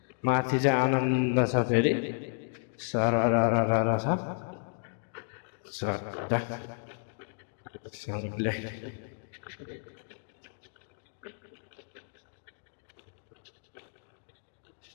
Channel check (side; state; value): right; silent; digital silence